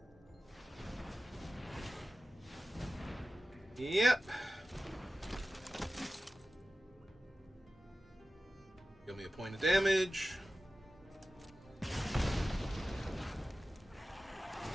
Yep. Give me a point of damage.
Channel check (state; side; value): normal; both; correlation 0.95